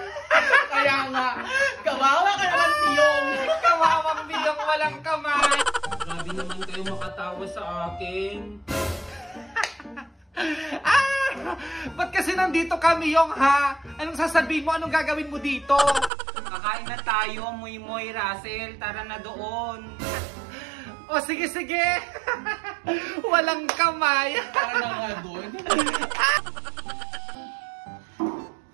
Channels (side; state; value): left; drops out; at 16.1 s